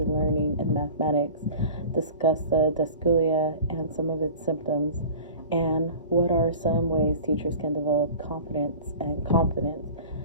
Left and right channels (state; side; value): inverted; both; correlation -0.40